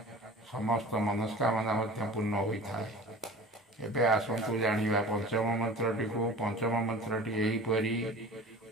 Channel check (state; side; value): normal; both; correlation 0.39